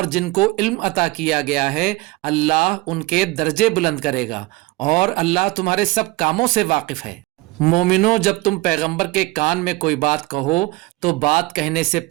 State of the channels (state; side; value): quieter; left; 20.9 dB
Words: جن کو علم عطا کیا گیا ہے اللہ ان کے درجے بلند کرے گا، اور اللہ تمہارے سب کاموں سے واقف ہے۔ مومنوں، جب تم پیغمبر کے کان میں کوئی بات کہو تو بات کہنے سے